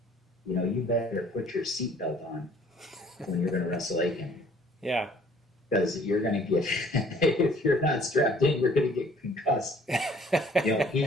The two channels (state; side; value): normal; both; correlation 0.57